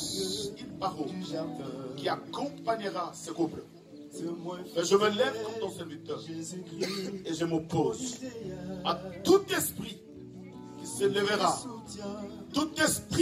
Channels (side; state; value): both; identical; correlation 1.00